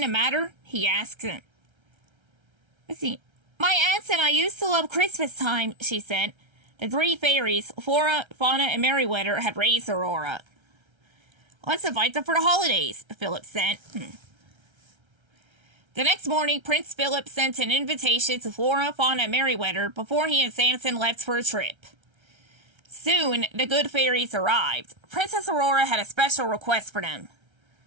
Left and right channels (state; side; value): late; left; 1.3 ms